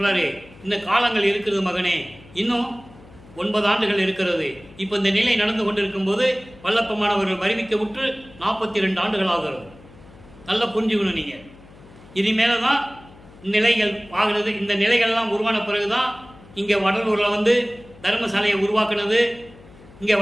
இந்த காலங்கள் இருக்கிறது மகனே, இன்னும் 9 ஆண்டுகள் இருக்கிறது. இப்போ இந்த நிலை நடந்து கொண்டிருக்கும் போது வல்லப்பமானவர்கள் அறிவிக்க விட்டு 42 ஆண்டுகள் ஆகிறது. நல்லா புரிஞ்சுக்கணும் நீங்க. இனிமேல தான் நிலைகள் ஆகிறது. இந்த நிலைகள்லாம் உருவான பிறகுதான் இங்கே வடலூரில் தர்மசாலையை உருவாக்குனது, இங்கே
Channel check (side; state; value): left; noise; hum, 22 dB below the sound